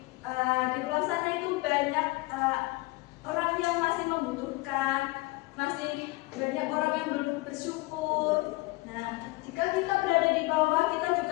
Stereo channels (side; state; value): right; quieter; 22.7 dB